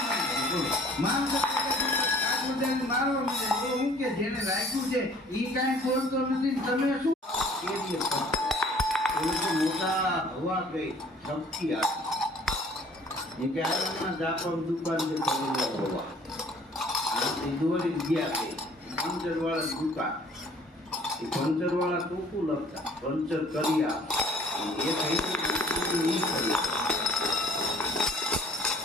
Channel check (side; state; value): both; normal; correlation 0.54